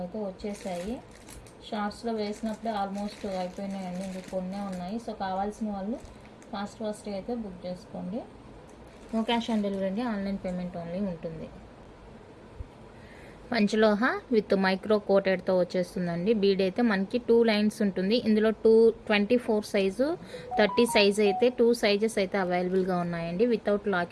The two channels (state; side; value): identical; both; correlation 1.00